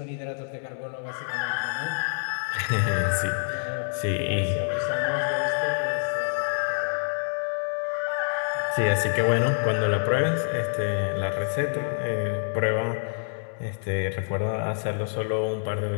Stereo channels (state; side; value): silent; right; 60 dB below the other